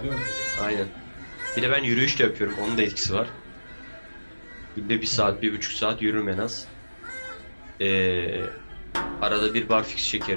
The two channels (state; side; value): inverted; both; correlation -1.00